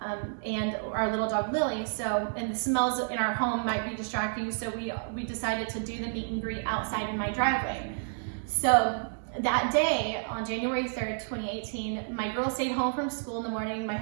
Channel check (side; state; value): left; silent; digital silence